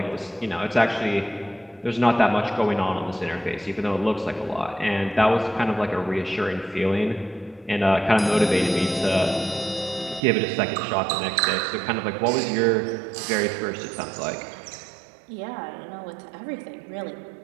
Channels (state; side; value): drops out; left; at 10.2 s